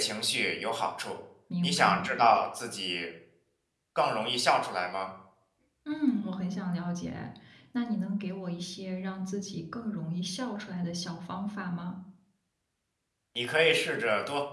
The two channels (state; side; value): identical; both; correlation 1.00